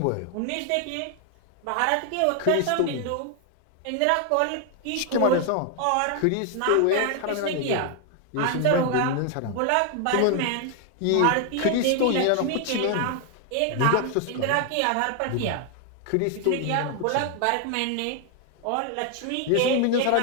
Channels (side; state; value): both; different; correlation 0.00